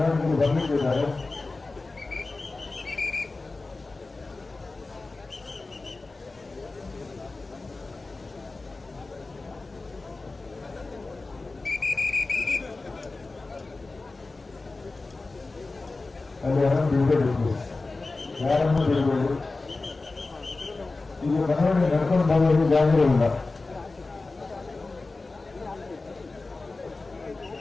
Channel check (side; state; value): right; quieter; 3.5 dB